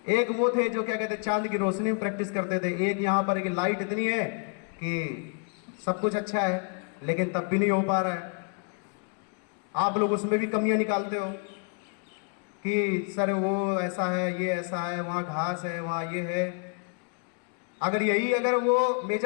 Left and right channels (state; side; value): quieter; right; 36.3 dB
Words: एक वो थे जो क्या कहते हैं चांद की रोशनी में प्रैक्टिस करते थे, एक यहाँ पर एक लाइट इतनी है कि सब कुछ अच्छा है लेकिन तब भी नहीं हो पा रहा है। आप लोग उसमें भी कमियां निकालते हो कि सर वो ऐसा है, ये ऐसा है, वहाँ घास है, वहाँ ये है। अगर वो